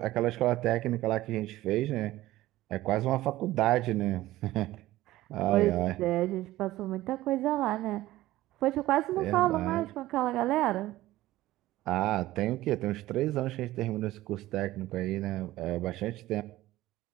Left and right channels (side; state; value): left; quieter; 16.3 dB